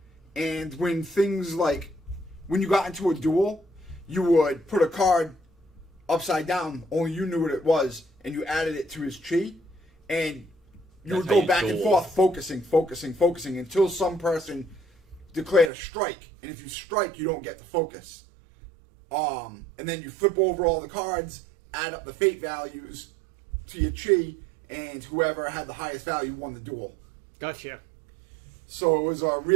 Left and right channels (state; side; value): drops out; left; at 15.7 s